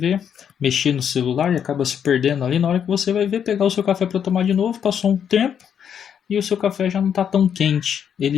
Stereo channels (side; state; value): right; quieter; 8.3 dB